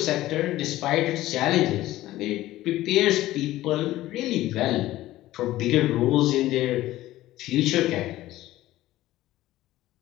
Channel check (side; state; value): right; quieter; 15.7 dB